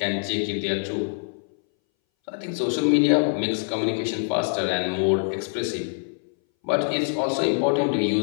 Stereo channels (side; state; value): right; silent; 61 dB below the other